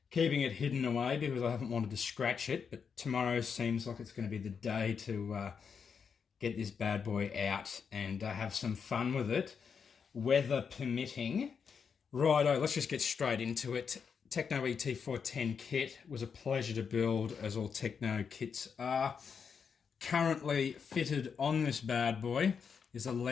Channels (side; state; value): right; quieter; 6.4 dB